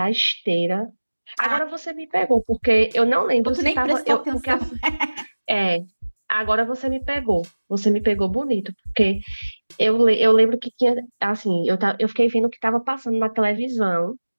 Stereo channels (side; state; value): both; inverted; correlation -1.00